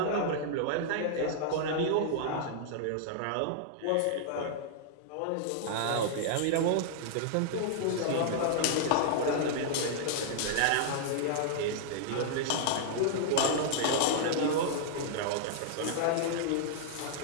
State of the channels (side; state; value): both; different; correlation -0.01